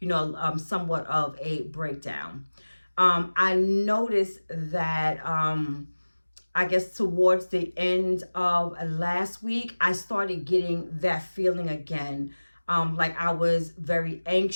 you know, somewhat of a breakdown. I noticed that, I guess towards the end of last week, I started getting that feeling again. Like I was very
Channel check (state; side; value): inverted; both; correlation -1.00